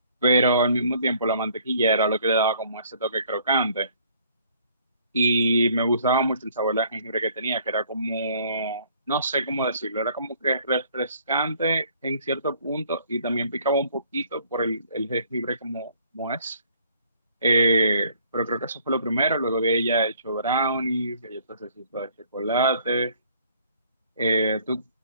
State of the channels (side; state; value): both; inverted; correlation -0.60